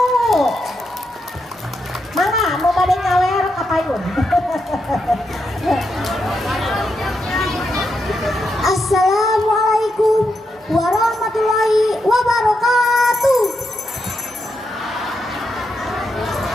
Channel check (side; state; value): both; normal; correlation 0.83